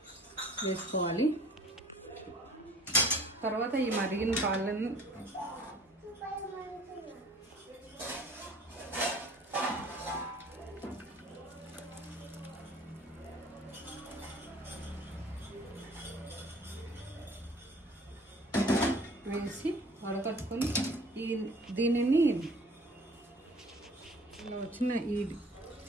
వేసుకోవాలి. తర్వాత ఈ మరిగిన పాలను వేసి వడకట్టుకొని దీనిని ఇలా వచ్చిన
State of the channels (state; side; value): normal; both; correlation 0.50